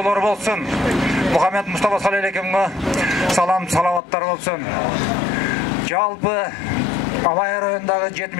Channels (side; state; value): right; drops out; at 4.0 s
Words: болсун. Мухаммед Мустафа саллаллаху салам салаваттар болсун. Жалпы Алай районундагы